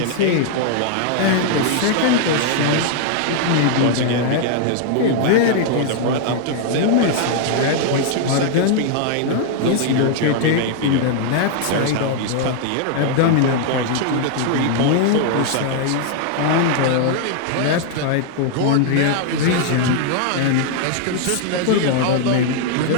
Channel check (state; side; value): different; both; correlation 0.00